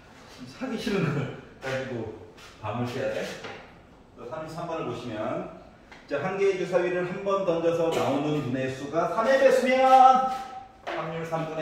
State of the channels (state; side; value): identical; both; correlation 1.00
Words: 사기 싫은 걸 가지고 밤을 새야 돼? 33번을 보시면 자, 한 개의 주사위를 한 번 던져서 나오는 분의 수가 3의 배수면 확률